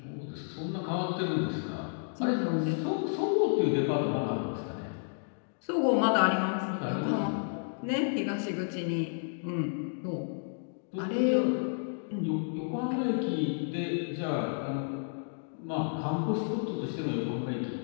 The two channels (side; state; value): right; silent; digital silence